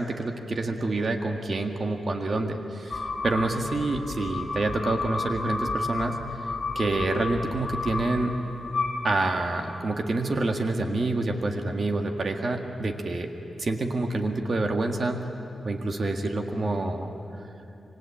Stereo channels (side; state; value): both; normal; correlation 0.88